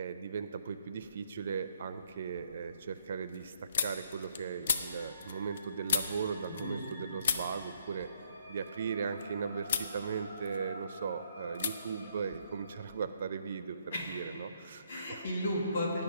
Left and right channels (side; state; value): both; inverted; correlation -0.69